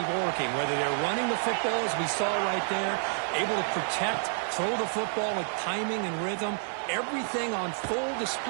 working, whether they're running the football, as we saw right there, able to protect, throw the football with timing and rhythm. Everything on full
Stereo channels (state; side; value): silent; left; digital silence